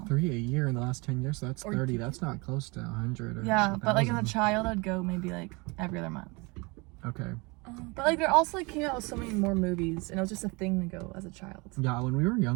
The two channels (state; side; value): quieter; left; 27.4 dB